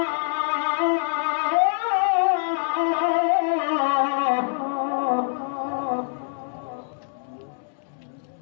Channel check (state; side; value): silent; right; digital silence